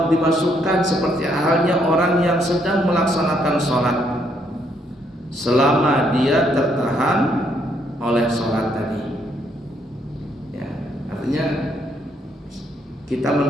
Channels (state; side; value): normal; both; correlation 0.72